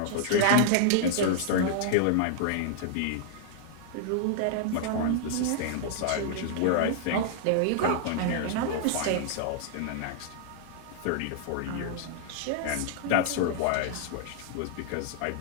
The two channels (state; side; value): different; both; correlation -0.01